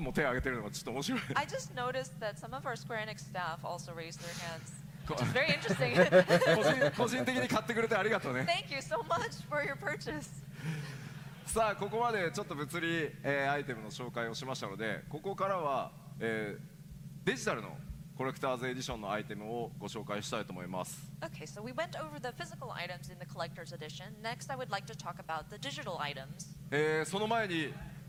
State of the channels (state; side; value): identical; both; correlation 1.00